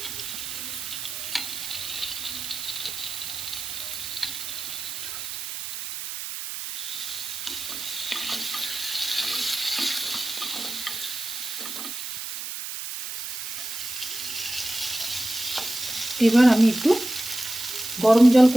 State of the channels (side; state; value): right; noise; hiss, 6 dB below the sound